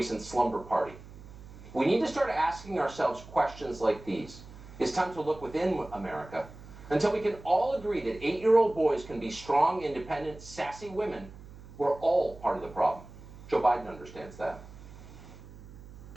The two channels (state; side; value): noise; right; hum, 17 dB below the sound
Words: slumber party? We need to start asking ourselves questions like these. It's time to look within America. Until we can all agree that 8-year-old boys can be strong, independent, sassy women, we're all part of the problem. Joe Biden understands that.